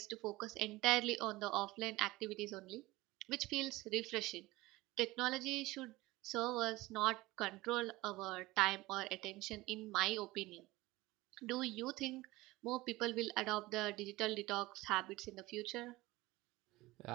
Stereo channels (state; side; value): quieter; left; 19.8 dB